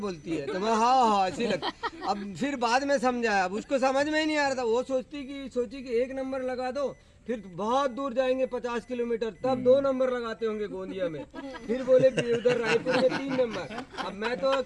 है। तो मैं हाँ ऐसे ही लगता। अब फिर बाद में समझाया, अब उसको समझ में ही नहीं आ रहा था। वो सोची कि 1 नंबर लगा दो, फिर बहुत दूर जाएंगे 50 किलोमीटर, तब 2 नंबर लगाते होंगे गोंदिया में। फिर बोले उधर रायपुर में 3 नंबर। अब मैं तो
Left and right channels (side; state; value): both; identical; correlation 1.00